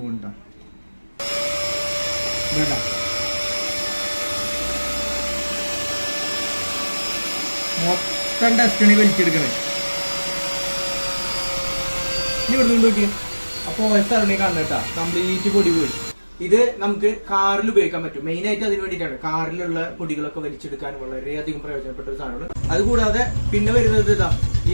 പോകുന്നുണ്ടാ. മൊത്തം ഡസ്റ്റാണ് വലിച്ചെടുക്കണേ. ഇനി ഇവിടെ നിന്ന് നോക്കി അപ്പൊ സ്ഥലം കാണുന്നേട്ടാ, കംപ്ലീറ്റ് പൊടി പോയി. ഇത് നമുക്ക് കാറിൽ ഉപയോഗിക്കാൻ പറ്റും. മെയിൻ ആയിട്ട് അതിന് വേണ്ടിയിട്ടാണ്. കാറിലുള്ള പൊടികളൊക്കെ വലിച്ചെടുക്കാൻ വളരെയധികം പ്രയോജനപ്പെട്ട ഒരു സാധനമാണ്. അതുകൂടാതെ പിന്നെ വരുന്നത് ഇതാ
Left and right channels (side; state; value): both; inverted; correlation -1.00